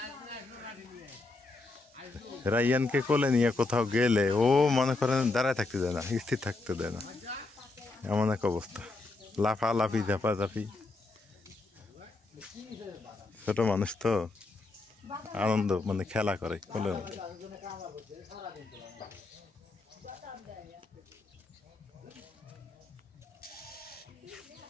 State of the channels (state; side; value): quieter; right; 3.4 dB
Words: রাইয়ানকে কোলে নিয়ে কোথাও গেলে ও মনে করেন দাঁড়ায় থাকতে দেয় না, স্থির থাকতে দেয় না, এমন এক অবস্থা। লাফালাফি ঝাপাঝাপি, ছোট মানুষ তো আনন্দ মানে খেলা করে কোলের মধ্যে।